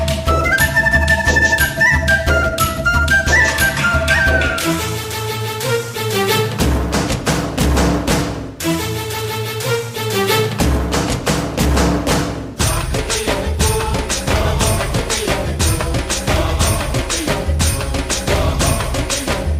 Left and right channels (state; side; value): identical; both; correlation 1.00